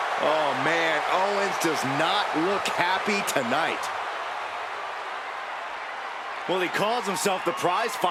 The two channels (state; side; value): identical; both; correlation 1.00